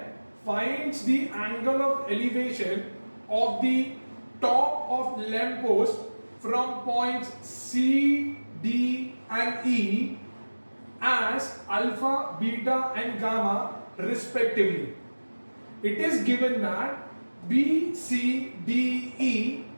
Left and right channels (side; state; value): both; inverted; correlation -1.00